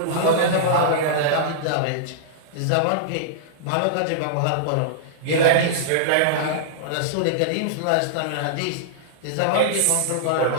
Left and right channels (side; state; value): both; different; correlation -0.02